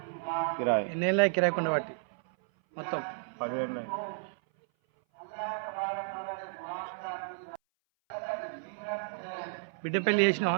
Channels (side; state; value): left; silent; 56 dB below the other